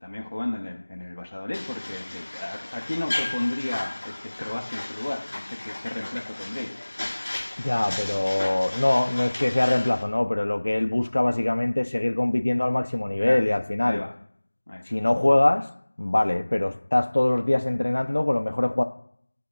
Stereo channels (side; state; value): both; inverted; correlation -1.00